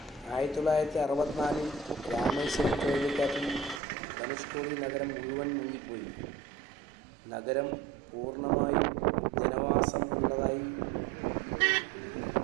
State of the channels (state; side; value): drops out; left; at 3.8 s